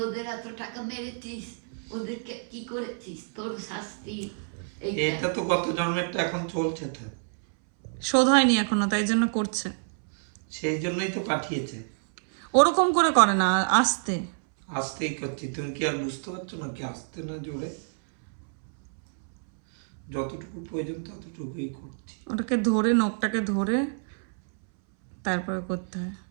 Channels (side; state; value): left; silent; 59 dB below the other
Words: ওদের এত টাকা মেরেছিস, ওদেরকে কি করেছিস, তোর শাস্তি। এটা তো গত জন্মেরটা এখন চলছে, তো শোধ হয়নি এখনো, তাই জন্য করছে। সেই জন্যই তো পাঠিয়েছে। ওরকম করে করে না, আস্তে। আস্তেই করছি, তুমি কি আর বুঝতে পারছো না কি আস্তে না জোরে? যতটুকু প্রয়োজন ততটুকুই করছি। ওটাকে ধরে, নখটাকে ধরে তারপরে করতে হয়।